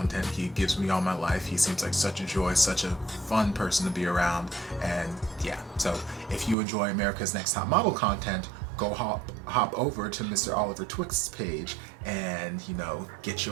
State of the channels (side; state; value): left; drops out; at 6.6 s